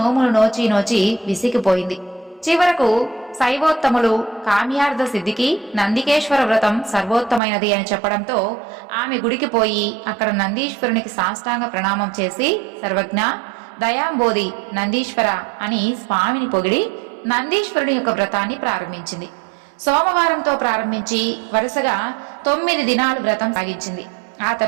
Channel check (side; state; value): left; drops out; at 7.4 s